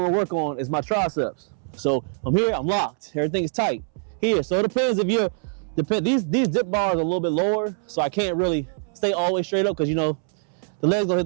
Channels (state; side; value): silent; left; 63 dB below the other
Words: to work on is my triceps. So from here, I'm locked. Everything is tight here. So it depends if you're, these dip bars are a little bit lower, so I can't really stay all the way straight up because, you know, the legs don't hit